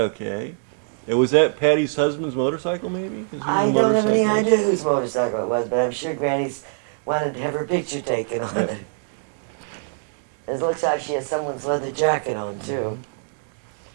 And was that Patty's husband's motorcycle, maybe? I don't have any idea whose motorcycle it was, but I'm sure Granny's wanted to have her picture taken on it. It looks like she has someone's leather jacket on, too.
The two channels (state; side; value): silent; left; digital silence